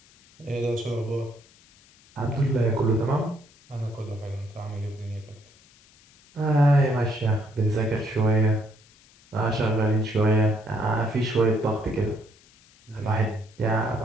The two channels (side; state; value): left; noise; hiss, 28 dB below the sound